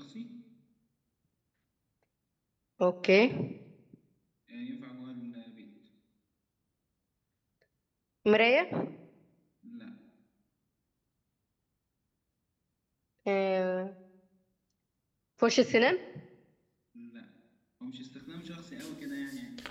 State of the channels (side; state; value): both; identical; correlation 1.00